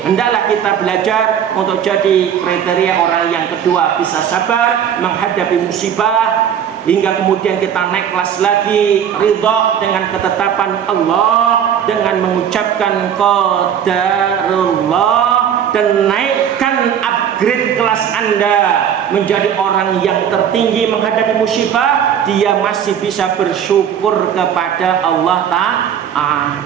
hendaklah kita belajar untuk jadi kriteria orang yang kedua, bisa sabar menghadapi musibah hingga kemudian kita naik kelas lagi, ridha dengan ketetapan Allah dengan mengucapkan qadarullah, dan naikkan upgrade kelas Anda menjadi orang yang tertinggi menghadapi musibah. Dia masih bisa bersyukur kepada Allah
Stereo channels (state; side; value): quieter; left; 8.8 dB